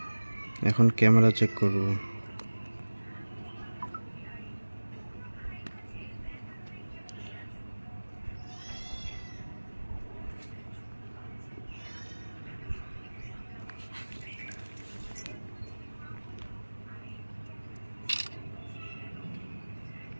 এখন camera check করব।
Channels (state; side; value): inverted; both; correlation -1.00